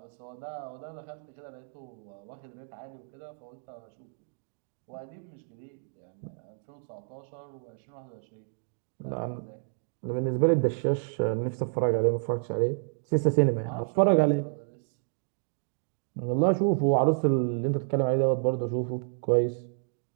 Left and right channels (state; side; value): silent; left; digital silence